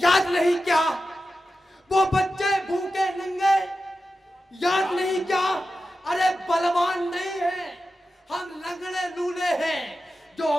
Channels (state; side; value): normal; both; correlation 0.92